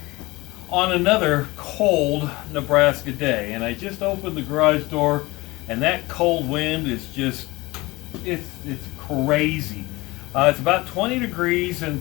on another cold Nebraska day. And I just opened the garage door and that cold wind is just, it's crazy. It's about 20 degrees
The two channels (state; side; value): quieter; right; 21.7 dB